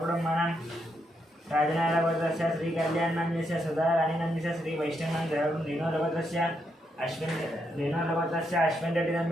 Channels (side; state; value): both; normal; correlation 0.79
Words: राजनारायणगोत्रस्य श्रीकल्याणनाम्यस्य सदाराणीनाम्यस्य श्रीवैष्णवनं सहकुटुं रेणुगोत्रस्य अश्विन